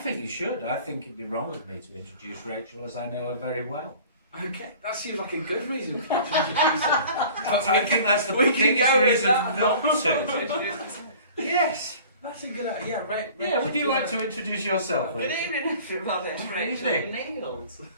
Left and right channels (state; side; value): inverted; both; correlation -0.46